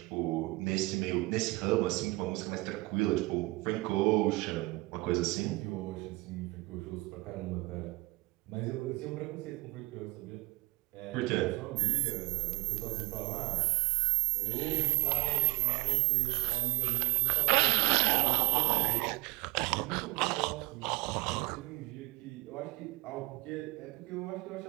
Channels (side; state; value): left; quieter; 22.7 dB